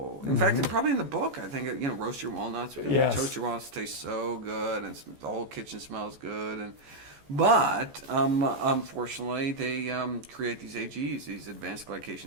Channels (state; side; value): late; left; 14 ms